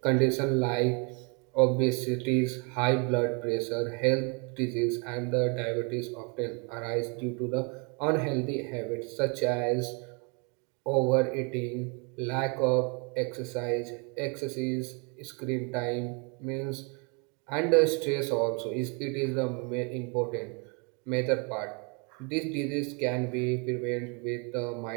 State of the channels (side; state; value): left; quieter; 34.2 dB